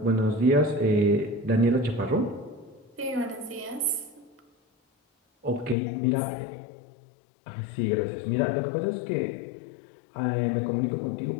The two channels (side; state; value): right; drops out; at 5.8 s